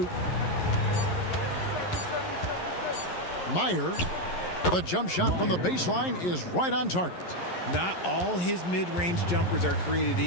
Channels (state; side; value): late; right; 11 ms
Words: Meyer. The jump shot from the baseline is right on target. Not all his mid-range jumpers are created